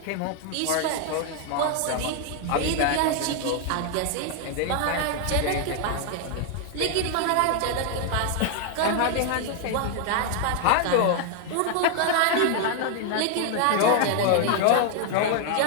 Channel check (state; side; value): different; both; correlation 0.00